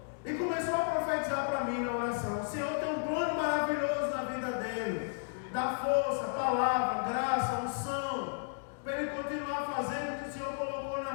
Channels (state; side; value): silent; right; digital silence